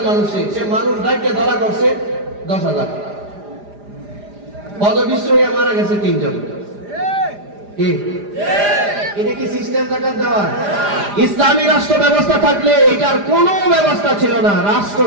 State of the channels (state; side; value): late; left; 4.9 ms